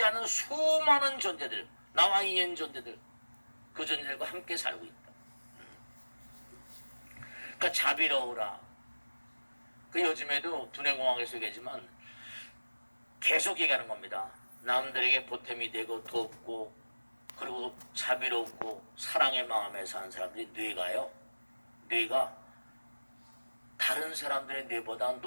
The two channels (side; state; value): both; inverted; correlation -1.00